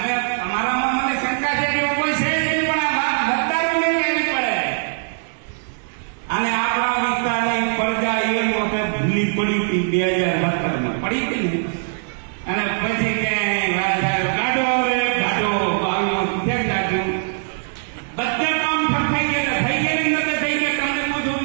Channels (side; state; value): left; silent; digital silence